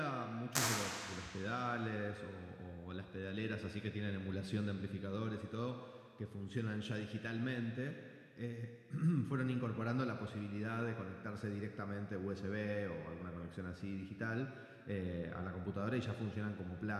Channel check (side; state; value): both; identical; correlation 1.00